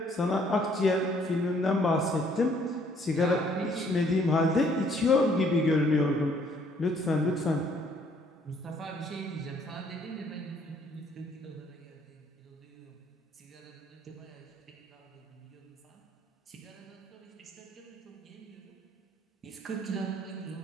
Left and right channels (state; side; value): normal; both; correlation 0.64